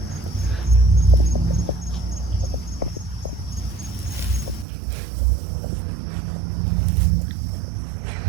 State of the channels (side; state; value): left; drops out; at 4.7 s